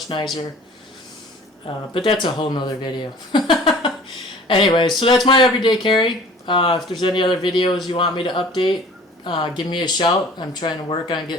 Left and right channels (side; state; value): both; normal; correlation 0.48